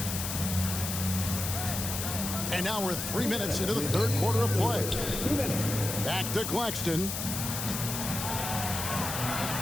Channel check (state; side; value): noise; left; hiss, 4 dB below the sound